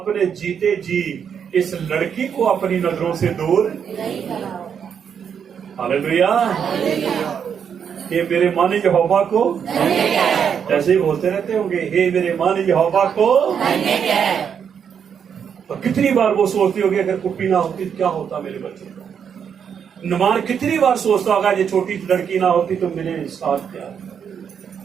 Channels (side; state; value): left; quieter; 7.6 dB